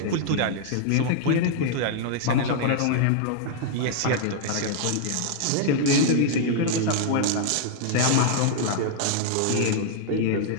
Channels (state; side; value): different; both; correlation -0.01